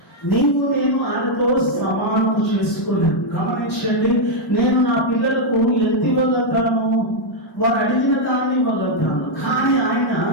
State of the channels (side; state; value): both; normal; correlation -0.02